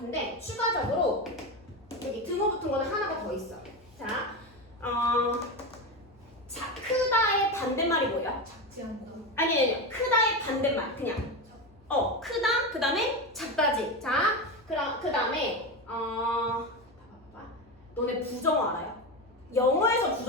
추가적으로 여기 등호 붙은 거는 하나가 더 있어. 자, 크다의 반대말이 뭐예요? 작지 않다. 아니 크다의 반대말 그냥 크다 그 다음에 작다지. 자, 그럼 그 다음에 너네 부정어 알아요? 영어에서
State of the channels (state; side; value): normal; both; correlation 0.18